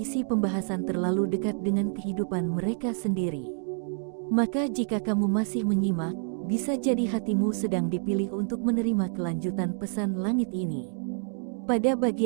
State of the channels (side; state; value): left; silent; 59 dB below the other